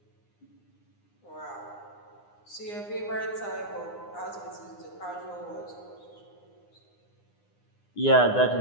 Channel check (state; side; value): late; right; 9.8 ms